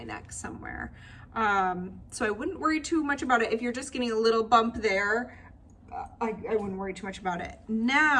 neck somewhere. So I wouldn't worry too much about it. If you're just getting a little bump there, I wouldn't worry too much about it.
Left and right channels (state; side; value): identical; both; correlation 1.00